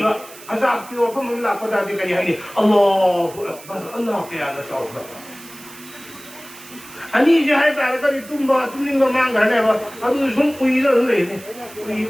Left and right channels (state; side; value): noise; right; hiss, 18 dB below the sound